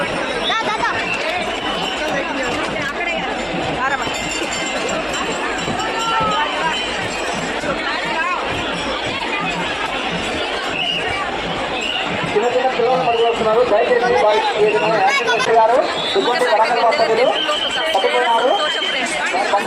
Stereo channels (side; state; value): both; identical; correlation 1.00